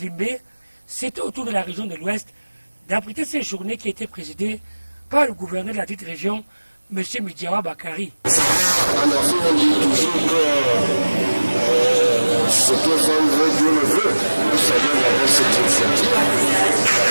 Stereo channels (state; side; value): inverted; both; correlation -1.00